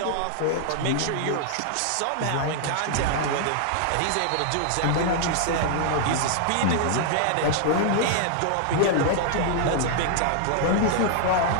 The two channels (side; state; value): both; different; correlation -0.01